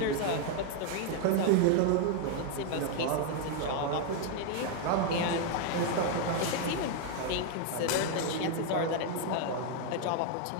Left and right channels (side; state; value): both; different; correlation 0.00